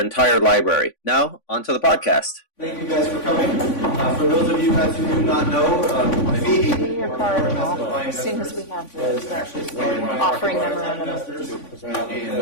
library. Now, on to the podcast. Thank you guys for coming. For those of you guys who do not know, FIBI, your card and all. As soon as we have this, offering memorandum. They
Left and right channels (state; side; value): late; right; 3.5 ms